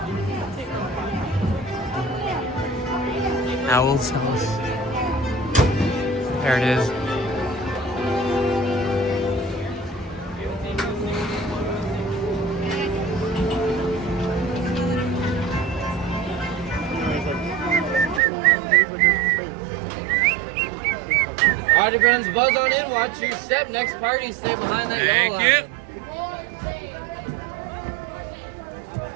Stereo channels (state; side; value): drops out; left; at 18.2 s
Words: Owl's house. There it is. Alrighty friends, buzz on in, watch your step. Next party, stay behind that Thank yellow you.